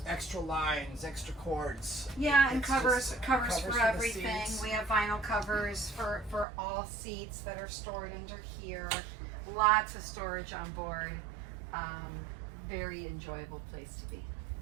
Extra lines, extra cords. Yeah, and covers for for everything. We have vinyl covers for all seats that are stored under here. Lots of storage on board. Very enjoyable place to be.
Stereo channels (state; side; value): drops out; left; at 6.5 s